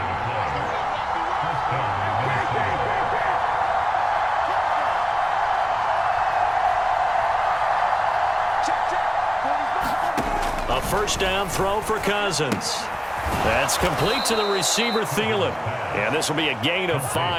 A 1st down throw for Cousins. That's complete to the receiver, Thielen. And this will be a gain of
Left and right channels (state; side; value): identical; both; correlation 1.00